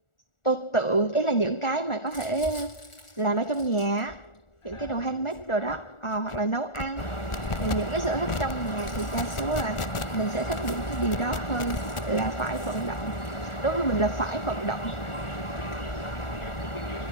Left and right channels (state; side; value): late; right; 1.4 ms